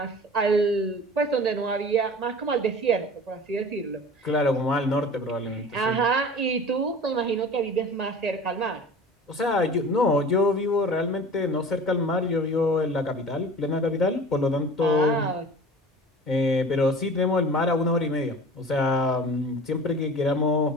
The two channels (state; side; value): normal; both; correlation 0.40